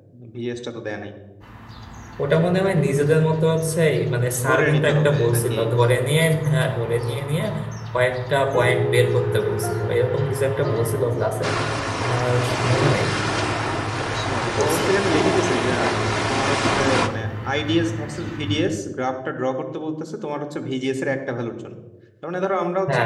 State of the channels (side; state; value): both; identical; correlation 1.00